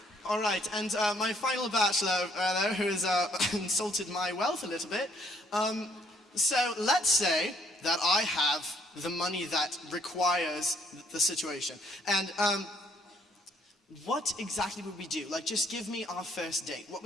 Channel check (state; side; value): normal; both; correlation 0.66